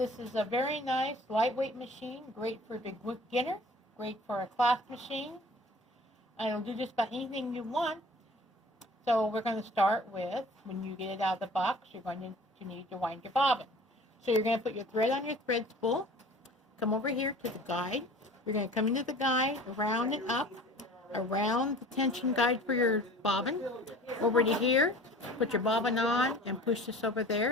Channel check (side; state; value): both; normal; correlation 0.45